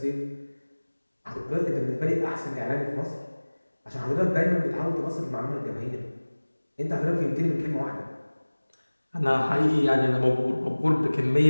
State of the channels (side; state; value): both; inverted; correlation -1.00